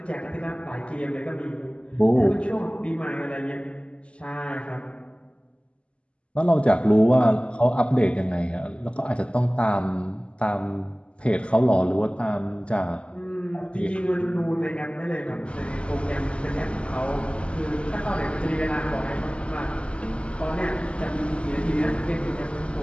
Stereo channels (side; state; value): right; late; 0.056 ms